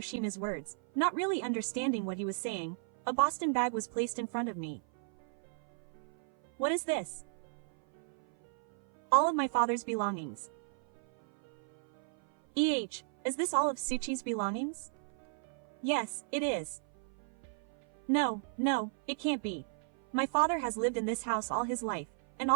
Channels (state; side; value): silent; left; 55 dB below the other